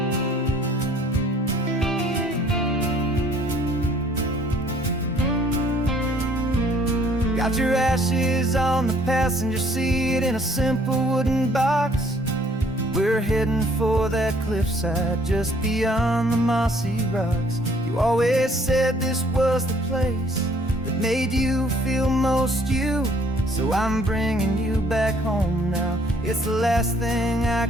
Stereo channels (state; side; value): normal; both; correlation 0.60